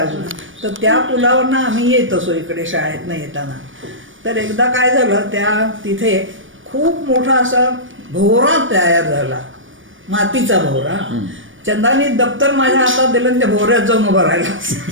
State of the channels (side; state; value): left; late; 0.57 ms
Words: अजून. तर त्या पुलावरनं आम्ही येत असो इकडे शाळेतनं येताना. तर एकदा काय झालं, त्या तिथे खूप मोठा असा भोवरा तयार झाला, मातीचा भोवरा. चंदानी दप्तर माझ्या हातात दिलं आणि त्या भोवऱ्यात जाऊन उभं राहिला.